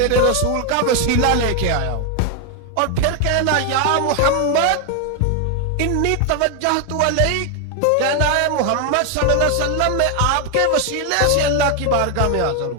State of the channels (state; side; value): different; both; correlation 0.01